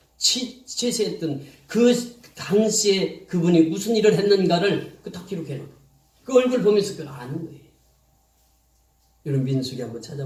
취세했던 그 당시에 그분이 무슨 일을 했는가를 딱 기록해놓고 그 얼굴 보면서 그걸 아는 거예요. 여러분 민수기 한번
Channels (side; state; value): both; identical; correlation 1.00